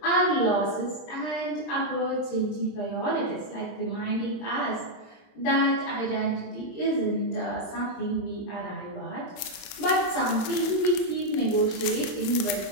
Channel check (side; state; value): right; late; 27 ms